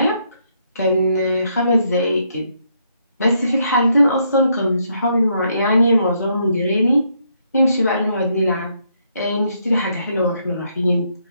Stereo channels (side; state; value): both; inverted; correlation -0.74